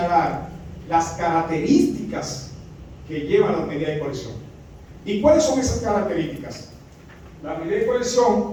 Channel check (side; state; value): both; identical; correlation 1.00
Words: las características que llevan las medidas de coerción. ¿Y cuáles son esas características? Las medidas de